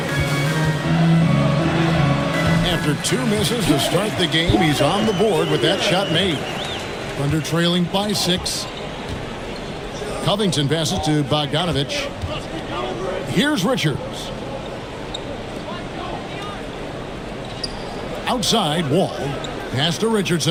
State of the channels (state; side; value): identical; both; correlation 1.00